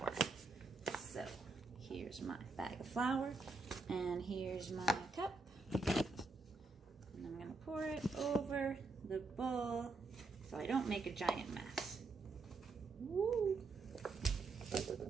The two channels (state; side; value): quieter; left; 3.8 dB